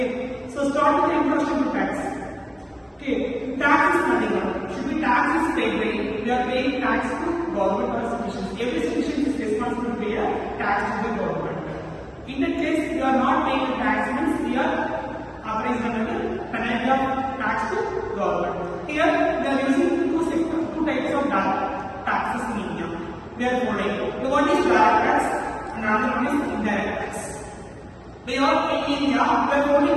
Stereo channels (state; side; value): identical; both; correlation 1.00